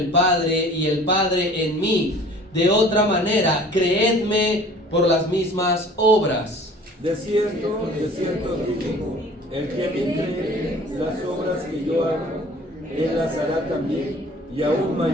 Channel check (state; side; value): normal; both; correlation 0.48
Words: Padre y el Padre en mí. De otra manera, creedme por las mismas obras. De cierto os digo, el que me cree, las obras que yo hago, Él las hará también, y aún